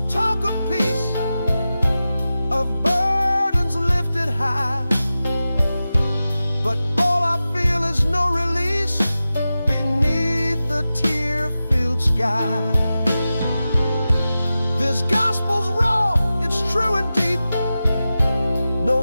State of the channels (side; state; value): both; inverted; correlation -0.94